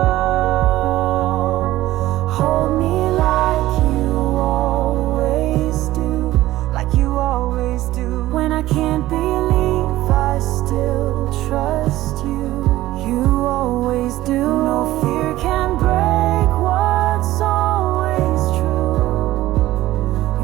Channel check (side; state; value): left; quieter; 15.9 dB